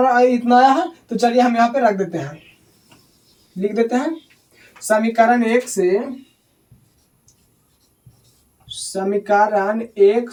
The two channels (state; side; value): identical; both; correlation 1.00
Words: इतना आया है, तो चलिए हम यहाँ पे रख देते हैं, लिख देते हैं समीकरण 1 से